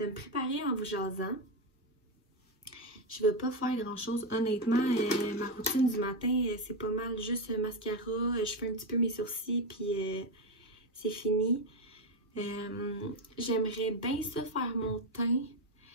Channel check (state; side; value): normal; both; correlation 0.09